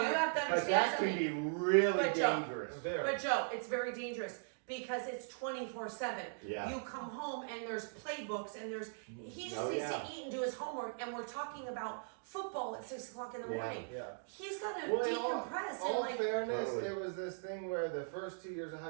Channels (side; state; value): left; silent; digital silence